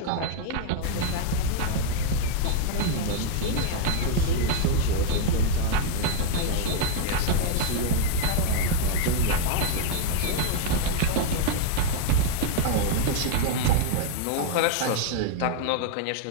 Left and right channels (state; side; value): different; both; correlation 0.00